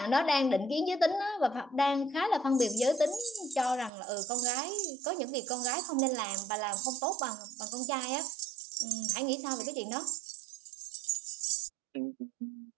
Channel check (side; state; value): left; drops out; at 3.9 s